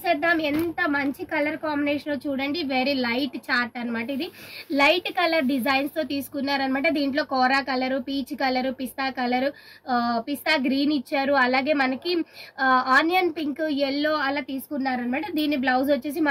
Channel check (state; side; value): identical; both; correlation 1.00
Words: ఎంత మంచి కలర్ కాంబినేషన్ చూడండి, వెరీ లైట్ చార్ట్ అనమాట. ఇది లైట్ కలర్ డిజైన్స్తో తీసుకున్నారనమాట. దీంట్లో కోరా కలరు, పీచ్ కలరు, పిస్తా గ్రీన్ ఇచ్చారు. అలాగే మనకి ఆనియన్ పింక్, ఎల్లో అలా తీసుకున్నారనమాట. దీని బ్లౌజ్ వచ్చేసి